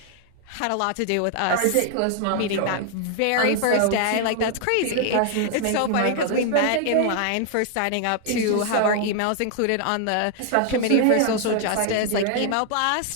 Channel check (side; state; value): both; different; correlation 0.00